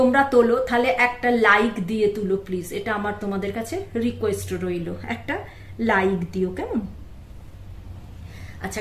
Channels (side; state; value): both; identical; correlation 1.00